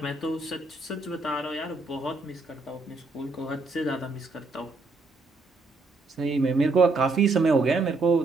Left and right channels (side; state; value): left; quieter; 3.4 dB